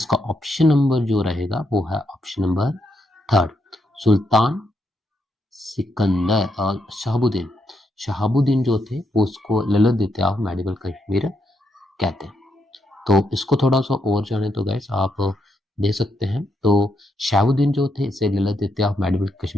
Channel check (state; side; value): normal; both; correlation 0.79